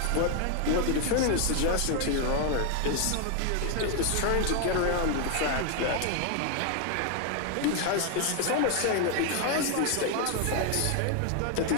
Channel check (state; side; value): different; both; correlation 0.01